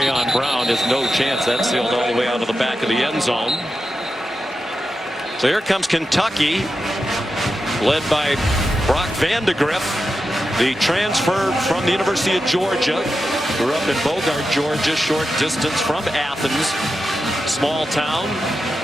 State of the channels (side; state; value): both; normal; correlation 0.90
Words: Brown has no chance. That's sailed all the way out of the back of the end zone. So here comes Kentucky, led by Brock Vandegrift, the transfer from the University of Georgia. Grew up in Bogart, Georgia, short distance from Athens, small town.